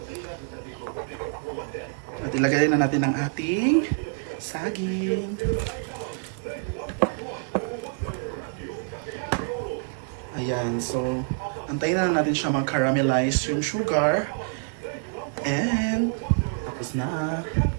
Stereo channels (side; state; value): left; silent; 60 dB below the other